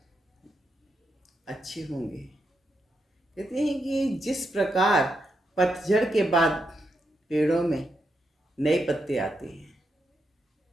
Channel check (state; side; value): normal; both; correlation 0.83